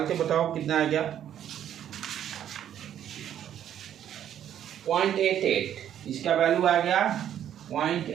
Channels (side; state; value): left; quieter; 10.3 dB